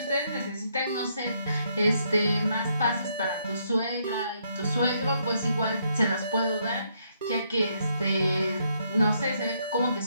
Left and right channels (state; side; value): inverted; both; correlation -0.74